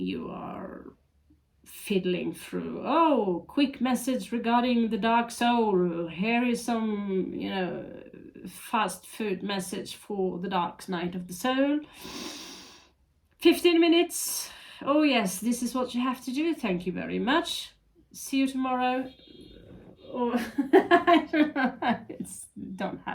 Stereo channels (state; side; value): identical; both; correlation 1.00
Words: are fiddling through. Oh, quick message regarding the dark soul. Here is some, fast food message for the dark night of the soul. 15 minutes. Oh yes, this is what you have to do. Thank you very much. See you tomorrow. Or I don't